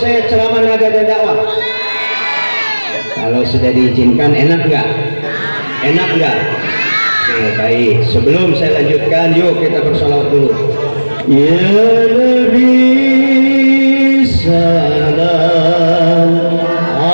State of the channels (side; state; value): both; inverted; correlation -1.00